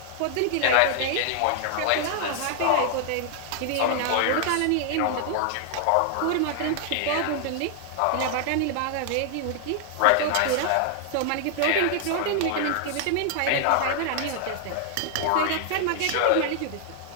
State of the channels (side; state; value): both; different; correlation 0.00